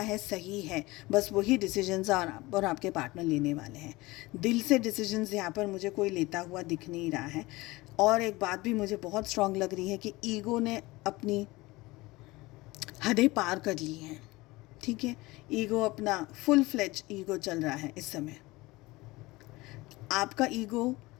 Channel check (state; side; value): quieter; right; 21.1 dB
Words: है सही है, बस वही डिसीजंस और आपके पार्टनर लेने वाले हैं। दिल से डिसीजंस यहाँ पर मुझे कोई लेता हुआ दिख नहीं रहा है। और एक बात भी मुझे बहुत स्ट्रांग लग रही है कि ईगो ने अपनी हदें पार कर ली हैं। ठीक है, ईगो अपना फुल फ्लेज ईगो चल रहा है इस समय। आपका ईगो